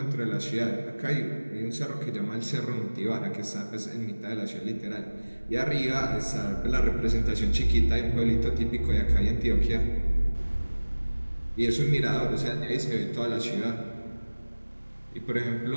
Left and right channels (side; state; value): both; inverted; correlation -1.00